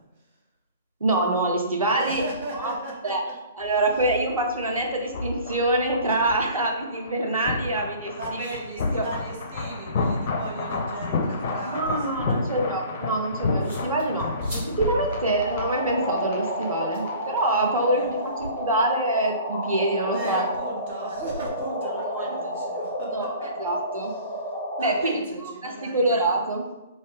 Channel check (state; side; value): inverted; both; correlation -0.46